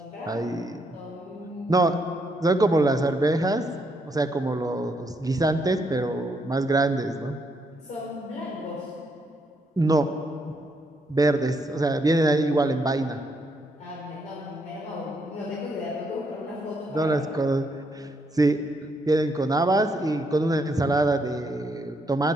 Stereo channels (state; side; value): normal; both; correlation 0.76